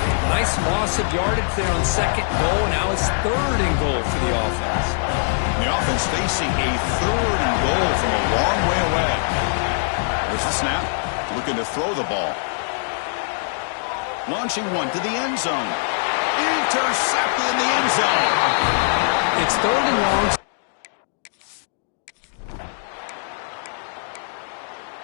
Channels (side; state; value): right; silent; digital silence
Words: Nice loss of yardage there on second goal. Now it's third and goal for the offense. The offense facing a third and goal from a long way away. There's the snap. Looking to throw the ball. Launching one to the end zone. Intercepted in the end zone. It's third and long.